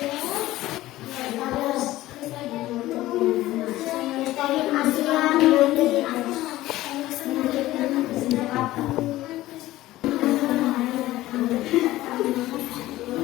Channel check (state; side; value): quieter; right; 16.3 dB